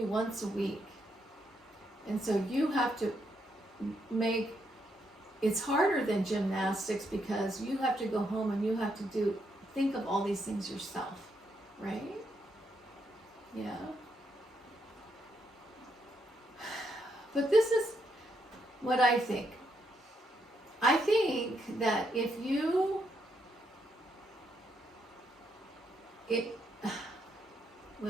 once a week. And so you have to make, it's harder than gymnastics because you have to go home and you have to think of all these things yourself, right? Yeah. But this is what I think. I think that if you,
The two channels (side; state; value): both; normal; correlation 0.77